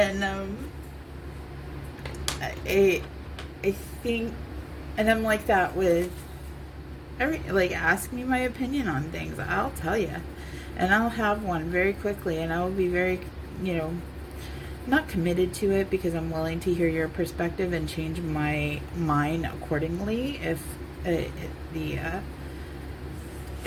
I think, and I'm like that with ask me my opinion on things. I'll tell you. And I'll have one very quickly, and I will be very, not committed to it, because I'm willing to hear your perspective and change my mind accordingly if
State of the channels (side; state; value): both; identical; correlation 1.00